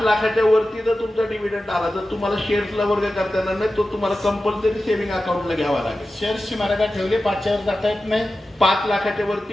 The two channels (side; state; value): both; normal; correlation 0.94